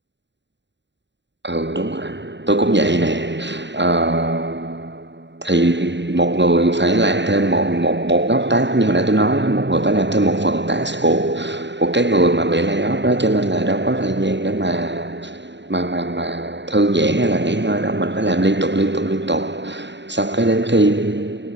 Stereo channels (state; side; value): late; left; 0.52 ms